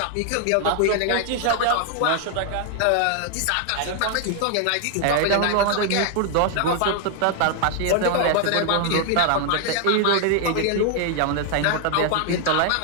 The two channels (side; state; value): both; different; correlation 0.00